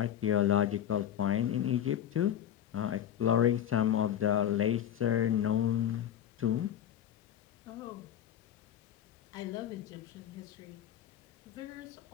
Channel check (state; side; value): quieter; right; 10.3 dB